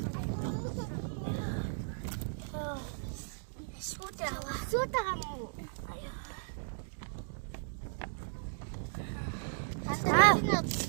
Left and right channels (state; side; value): silent; left; digital silence